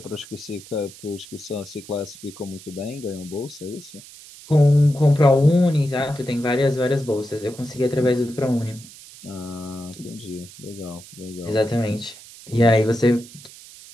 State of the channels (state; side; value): noise; right; hiss, 19 dB below the sound